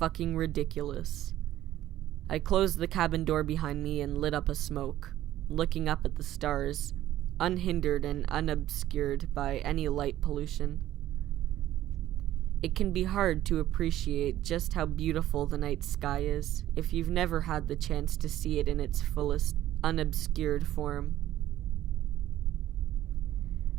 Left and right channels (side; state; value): left; quieter; 13.4 dB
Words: ridiculous. I closed the cabin door behind me and lit up a smoke, looking up at the stars, unhindered and unobscured by any light pollution. It can be hard to appreciate just how beautiful the night sky is if you've never had the chance to see it in its fullest, unobscured form.